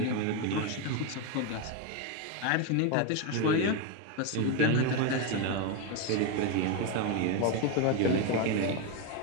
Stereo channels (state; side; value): different; both; correlation 0.03